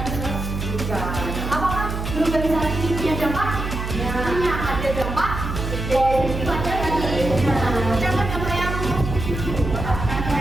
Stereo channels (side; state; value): right; noise; hum, 5 dB below the sound